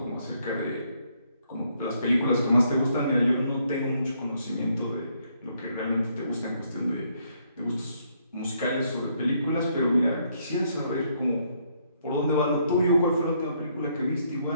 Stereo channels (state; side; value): inverted; both; correlation -0.71